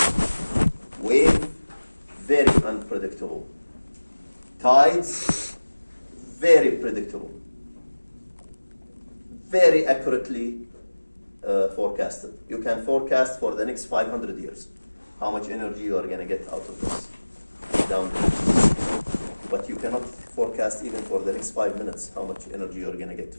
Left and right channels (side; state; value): both; inverted; correlation -1.00